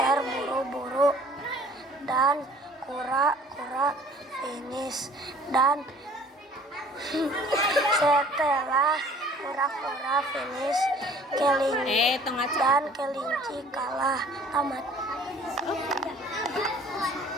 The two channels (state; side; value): normal; both; correlation 0.52